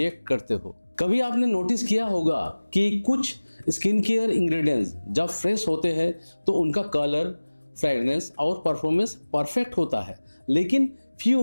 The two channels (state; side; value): inverted; both; correlation -1.00